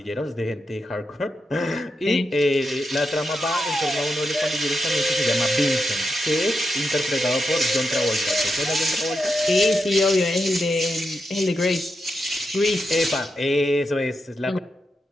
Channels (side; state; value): both; normal; correlation 0.86